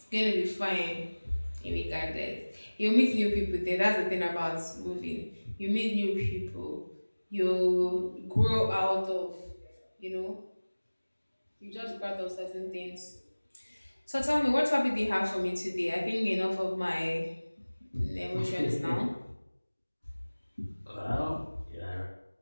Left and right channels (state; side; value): inverted; both; correlation -1.00